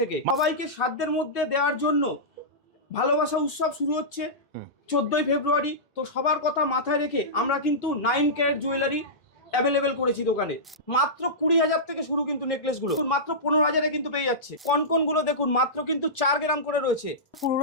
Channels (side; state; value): both; normal; correlation -0.16